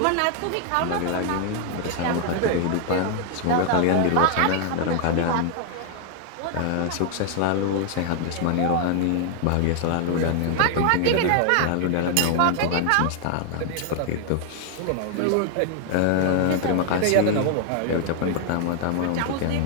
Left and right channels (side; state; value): both; different; correlation 0.00